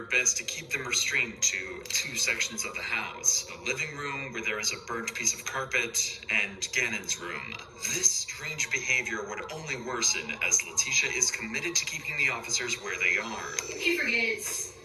best to keep them restrained to two sections of the house. The living room, where there is a burnt piece of carpet, and Gannon's room. This strange behavior would only worsen as Letitia is committed to keeping the officers where they are. He forgets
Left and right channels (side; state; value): both; identical; correlation 1.00